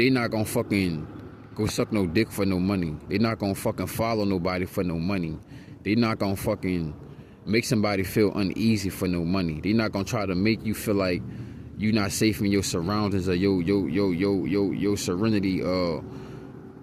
not gonna fucking go suck no dick for no money. They not gonna fucking follow nobody for no money. They not gonna fucking make somebody feel uneasy for no money. They not gonna try to make you feel like you not safe in your surroundings or your serenity,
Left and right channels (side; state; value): both; identical; correlation 1.00